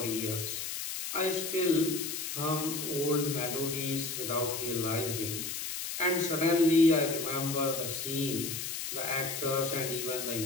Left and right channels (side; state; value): left; noise; hiss, 5 dB below the sound